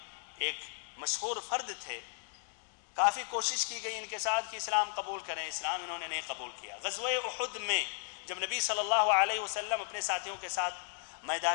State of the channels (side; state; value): right; silent; digital silence